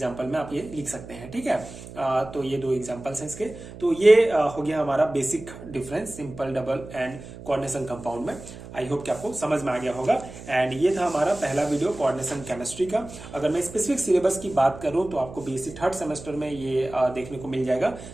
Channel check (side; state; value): right; noise; hum, 14 dB below the sound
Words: में आप ये लिख सकते हैं। ठीक है, तो ये दो एग्जांपल्स हैं इसके। तो ये हो गया हमारा basic difference simple, double and coordination compound में। आई होप कि आपको समझ में आ गया होगा। एंड ये था हमारा पहला वीडियो कोऑर्डिनेशन केमिस्ट्री का। अगर मैं स्पेसिफिक सिलेबस की बात करूं तो आपको बीएससी थर्ड सेमेस्टर में ये देखने को मिल जाएगा।